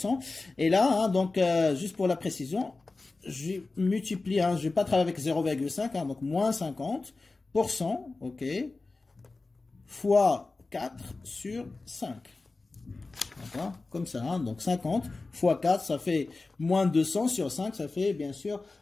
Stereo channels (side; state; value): right; quieter; 3.6 dB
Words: Et là, hein, donc, juste pour la précision, je multiplie, hein, je ne vais pas travailler avec 0,5, hein, donc moins 50%, ok, fois 4 sur 5. D'accord? Comme ça, hein? Donc 50 fois 4, ça fait moins 200 sur 5, ça fait bien sûr